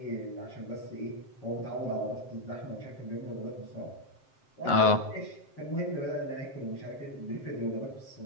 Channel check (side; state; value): right; late; 7.6 ms